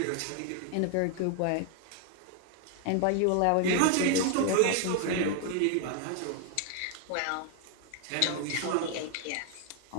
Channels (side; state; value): both; different; correlation 0.00